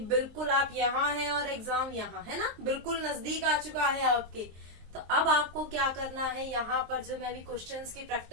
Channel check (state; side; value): late; left; 23 ms